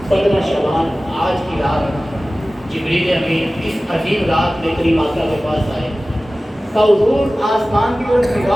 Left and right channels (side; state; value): both; normal; correlation 0.97